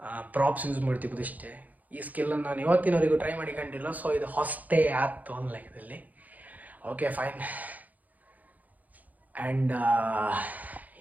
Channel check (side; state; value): left; late; 0.079 ms